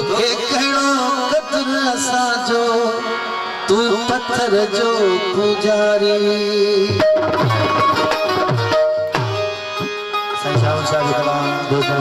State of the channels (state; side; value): identical; both; correlation 1.00